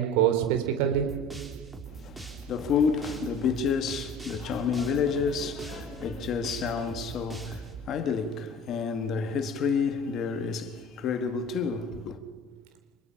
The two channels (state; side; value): normal; both; correlation 0.41